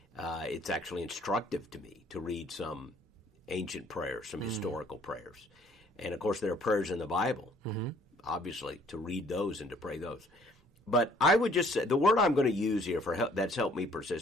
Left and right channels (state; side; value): normal; both; correlation 0.60